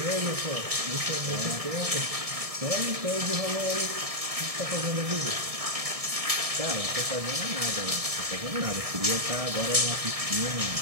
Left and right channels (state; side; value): late; left; 1.6 ms